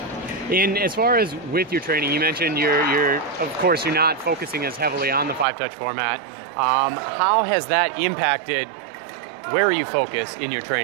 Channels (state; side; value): drops out; left; at 5.5 s